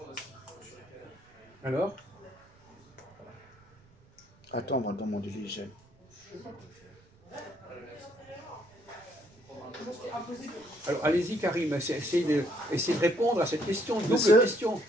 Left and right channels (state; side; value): noise; right; rumble, 29 dB below the sound